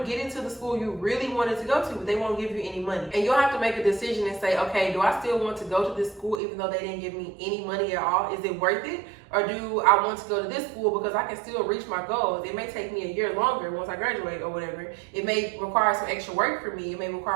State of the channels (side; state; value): left; drops out; at 6.4 s